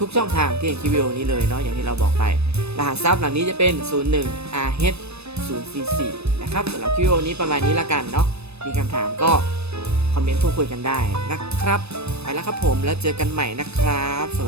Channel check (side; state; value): left; late; 0.79 ms